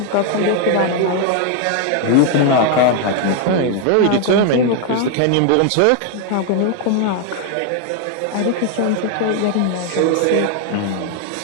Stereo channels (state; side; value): different; both; correlation 0.00